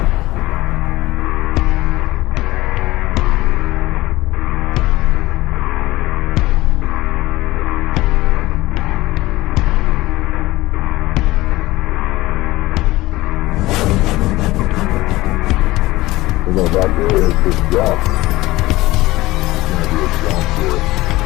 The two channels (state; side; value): quieter; right; 18.5 dB